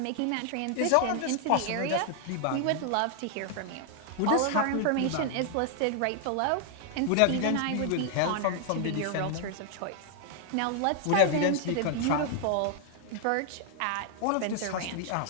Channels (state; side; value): different; both; correlation 0.00